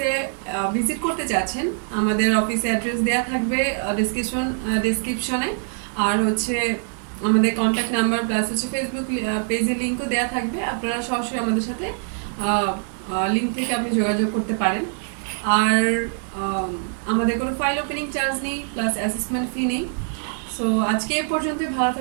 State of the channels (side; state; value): left; silent; 63 dB below the other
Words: ভিজিট করতে চাচ্ছেন, আমাদের অফিসে অ্যাড্রেস দেওয়া থাকবে ডিসক্রিপশনে, আর হচ্ছে আমাদের কন্ট্যাক্ট নাম্বার প্লাস হচ্ছে ফেসবুক পেজের লিঙ্কও দেওয়া থাকবে। আপনারা সরাসরি আমাদের সাথে লিঙ্ক থেকে আপনি যোগাযোগ করতে পারেন। আর আম, আমাদের কোনো ফাইল ওপেনিং চার্জ নেই, প্লাস অ্যাসেসমেন্ট ফি নেই। সো আজকে এ পর্যন্ত, ভালো